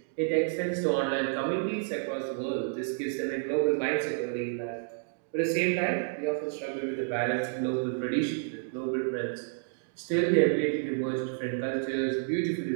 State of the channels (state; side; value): silent; left; digital silence